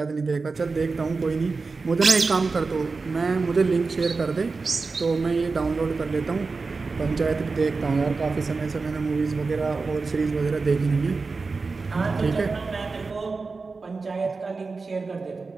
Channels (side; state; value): left; quieter; 4.2 dB